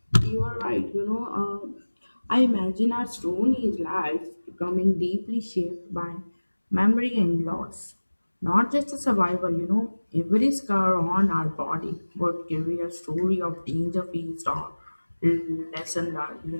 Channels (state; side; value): inverted; both; correlation -1.00